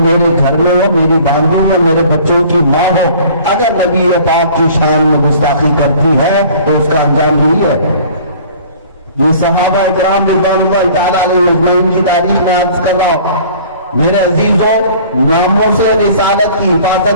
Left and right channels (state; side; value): inverted; both; correlation -0.49